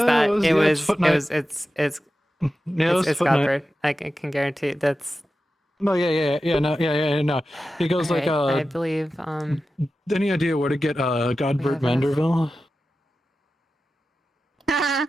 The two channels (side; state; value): both; normal; correlation 0.93